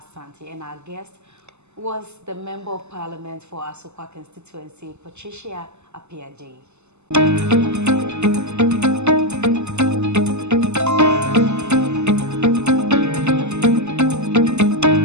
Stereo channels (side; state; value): left; late; 0.82 ms